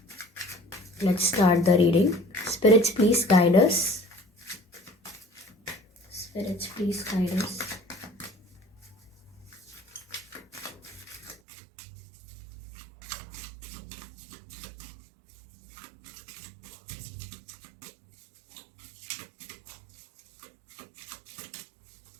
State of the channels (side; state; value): left; drops out; at 11.4 s